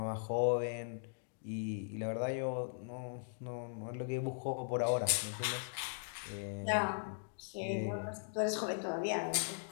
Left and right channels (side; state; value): right; silent; digital silence